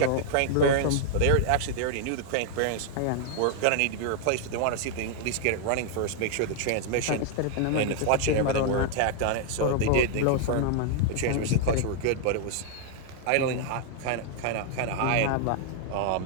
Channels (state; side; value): different; both; correlation 0.00